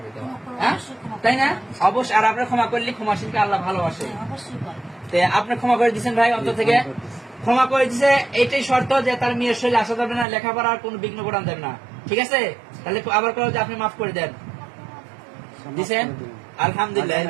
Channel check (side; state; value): left; drops out; at 10.2 s